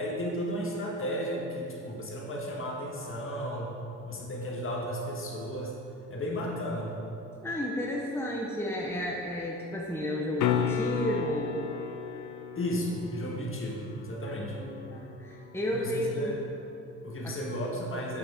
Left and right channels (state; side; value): normal; both; correlation 0.36